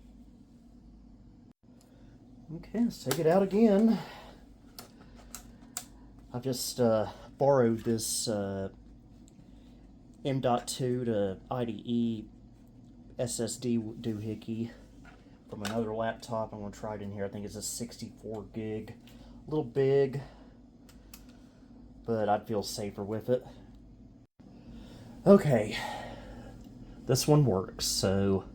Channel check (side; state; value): both; identical; correlation 1.00